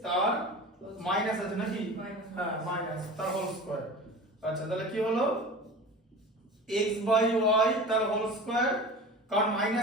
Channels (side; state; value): both; normal; correlation 0.35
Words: তার মাইনাস আছে নাকি হ্যাঁ মাইনাস তার হোল স্কয়ার আচ্ছা তাহলে কি হলো x by y তার হোল স্কয়ার কারণ